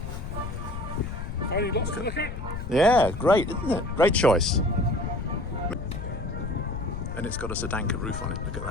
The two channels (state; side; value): noise; left; rumble, 7 dB below the sound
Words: Yeah, great, isn't it? Great choice. And it's got a Sedanka roof on it. Look at